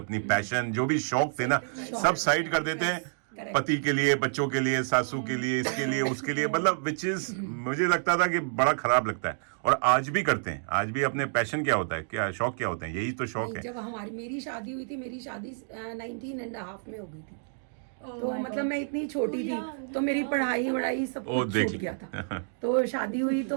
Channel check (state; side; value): silent; left; digital silence